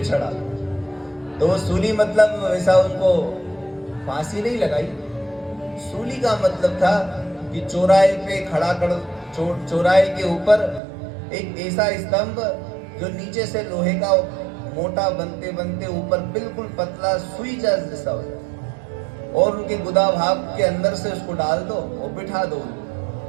चढ़ा। तो सूली मतलब वैसा उनको फांसी नहीं लगाई। सूली का मतलब था कि चौराहे पे खड़ा कर, चौराहे के ऊपर एक ऐसा स्तंभ जो नीचे से लोहे का मोटा बनते बनते ऊपर बिल्कुल पतला सुई जैसा हो जाए, और उनके गुदा भाग के अंदर से उसको डाल दो और बिठा दो।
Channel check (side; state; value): left; drops out; at 10.8 s